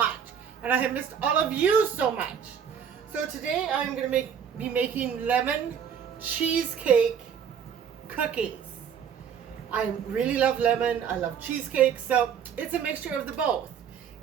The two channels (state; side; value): quieter; left; 7.7 dB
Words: and I have missed all of you so much. So today I'm going to be making lemon cheesecake cookies. I really love lemon. I love cheesecake, so it's a mixture of the both.